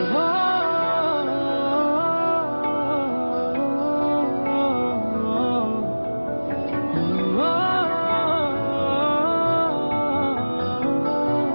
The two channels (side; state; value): both; inverted; correlation -1.00